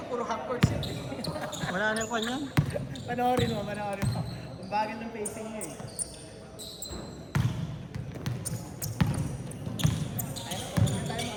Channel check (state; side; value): identical; both; correlation 1.00